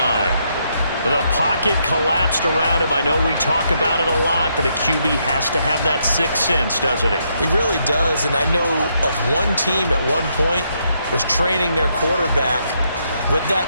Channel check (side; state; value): both; inverted; correlation -0.76